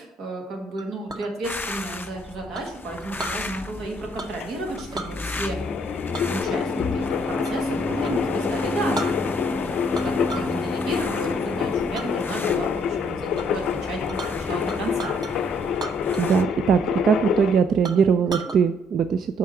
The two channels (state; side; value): normal; both; correlation 0.67